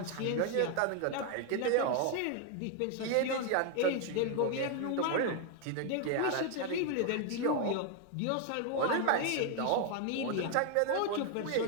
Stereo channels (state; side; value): different; both; correlation 0.01